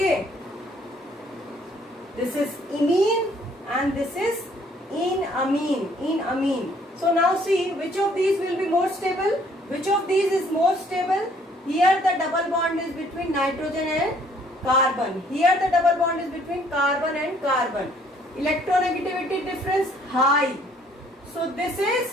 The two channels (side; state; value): both; normal; correlation 0.62